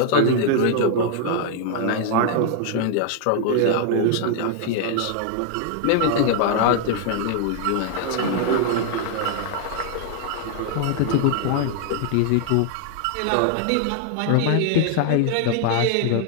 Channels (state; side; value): different; both; correlation 0.00